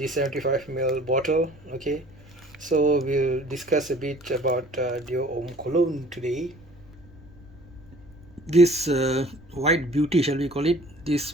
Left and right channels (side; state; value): right; noise; rumble, 25 dB below the sound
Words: 75 ml bottle. Okay, so we'll discuss a bit about Dior Homme Cologne today. This white beauty, shall we call it, this